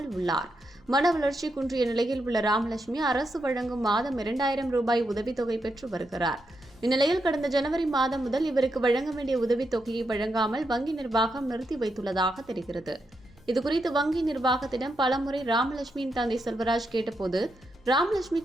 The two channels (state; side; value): normal; both; correlation 0.83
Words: உள்ளார். மன வளர்ச்சி குன்றிய நிலையில் உள்ள ராமலட்சுமி அரசு வழங்கும் மாதம் 2000 ரூபாய் உதவித்தொகை பெற்று வருகிறார். இந்நிலையில் கடந்த ஜனவரி மாதம் முதல் இவருக்கு வழங்க வேண்டிய உதவித்தொகையை வழங்காமல் வங்கி நிர்வாகம் நிறுத்தி வைத்துள்ளதாக தெரிகிறது. இதுகுறித்து வங்கி நிர்வாகத்திடம் பலமுறை ராமலட்சுமியின் தந்தை செல்வராஜ் கேட்டபோது,